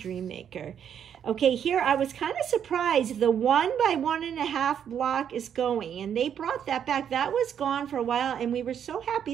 Okay, here I was kind of surprised. The 1 by 1.5 block is going, and they brought that back. That was gone for a while, and we were so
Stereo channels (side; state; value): left; quieter; 8.7 dB